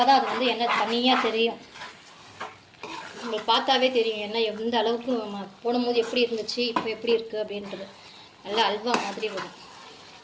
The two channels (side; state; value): both; identical; correlation 1.00